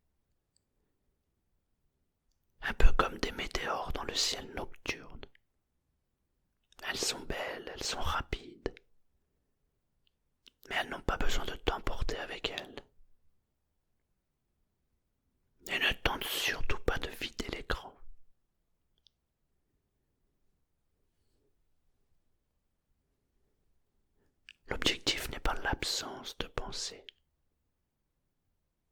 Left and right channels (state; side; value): identical; both; correlation 1.00